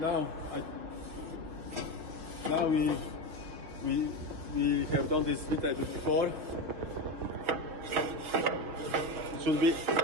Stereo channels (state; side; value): late; left; 6.2 ms